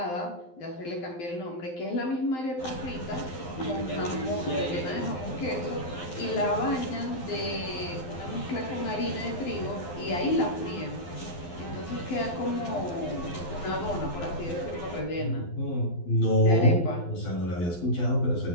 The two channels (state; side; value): late; right; 12 ms